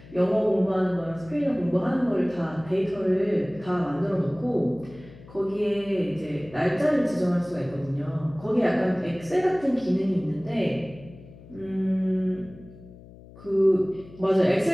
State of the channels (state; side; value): noise; left; hum, 20 dB below the sound